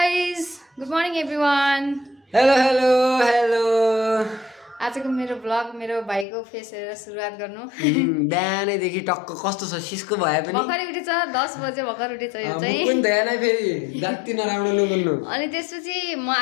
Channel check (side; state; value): right; drops out; at 6.2 s